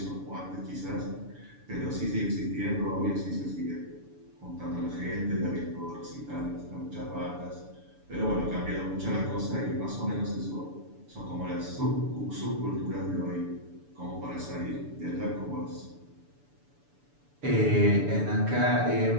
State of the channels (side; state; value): left; late; 6.9 ms